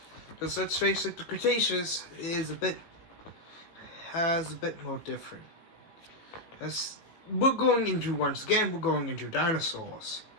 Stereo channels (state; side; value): late; right; 18 ms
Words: Because let's face it, the Cretaceous has a bit more different. As we're going into dinosaurs.